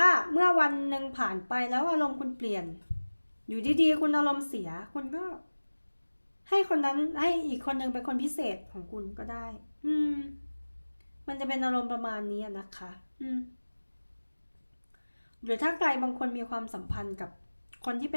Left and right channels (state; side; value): inverted; both; correlation -1.00